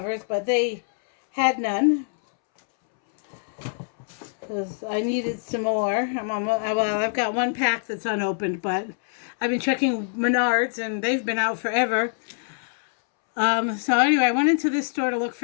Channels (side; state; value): right; silent; 62 dB below the other